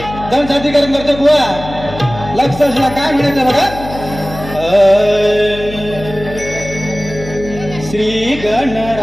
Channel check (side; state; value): left; noise; hum, 12 dB below the sound